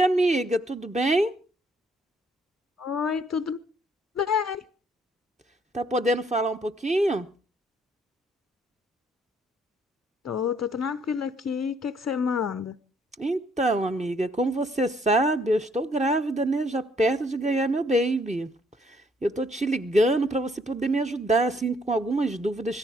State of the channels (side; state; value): both; normal; correlation 0.66